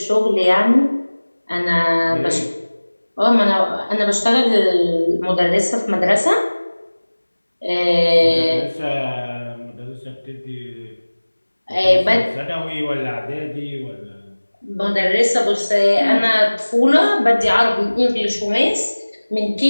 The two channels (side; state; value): both; inverted; correlation -1.00